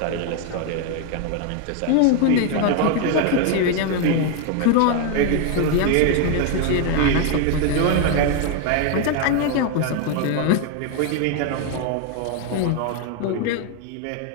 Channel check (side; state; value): both; different; correlation 0.01